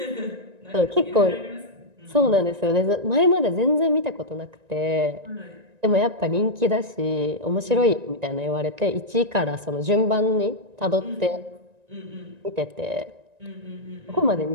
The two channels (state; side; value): late; left; 1.9 ms